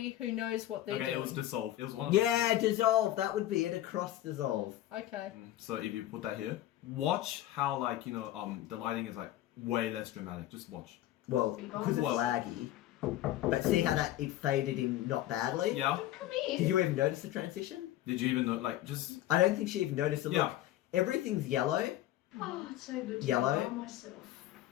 who knows what they're Okay, doing. it was dissolve. It was one of Yeah, dissolve. That would be it. Across dissolve. Okay. So if you put that here, watch how the lighting is like way less dramatic. Just watch. Well, because it's laggy. But see how it faded in not badly? Yeah. Come here. Did you even notice the transition? Did you even know? Just I don't think she even noticed it. Yeah. Look, everything's yellow, Oh, it's so good to Yellow. be by myself.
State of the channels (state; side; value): quieter; right; 14.0 dB